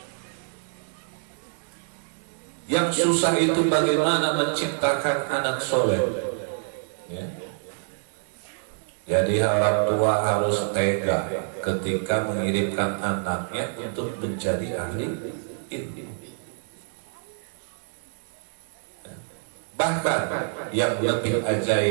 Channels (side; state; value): left; silent; 58 dB below the other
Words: Yang susah itu bagaimana menciptakan anak soleh. Jadi orang tua harus tega ketika mengirimkan anaknya untuk menjadi ahli ilmu. Bahkan yang lebih